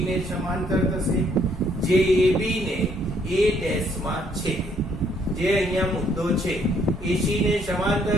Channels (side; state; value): both; normal; correlation 0.67